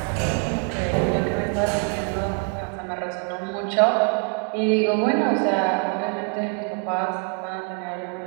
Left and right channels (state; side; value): quieter; left; 37.1 dB